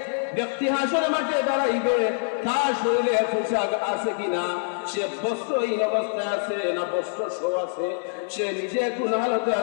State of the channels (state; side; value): silent; right; digital silence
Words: ব্যক্তি হাসরের মাঠে দাঁড়াইবে তার শরীরে পোশাক আছে কিনা, সে বস্ত্রহীন অবস্থায় আছে না বস্ত্র সহ আছে, সে নিজে কোন হালতে